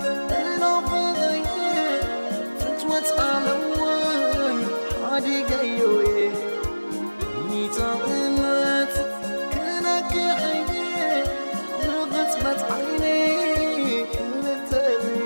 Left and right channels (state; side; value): inverted; both; correlation -1.00